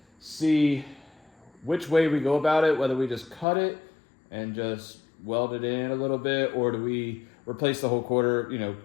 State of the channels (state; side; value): drops out; right; at 3.5 s